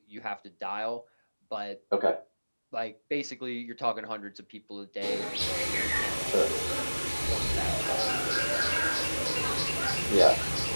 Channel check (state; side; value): inverted; both; correlation -1.00